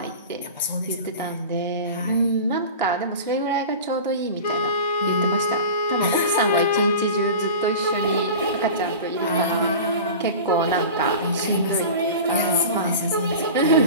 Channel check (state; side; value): inverted; both; correlation -0.33